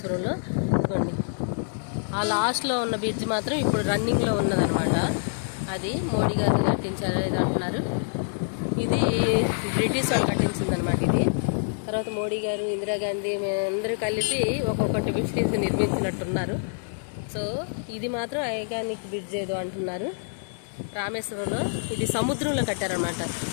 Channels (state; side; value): silent; right; 61 dB below the other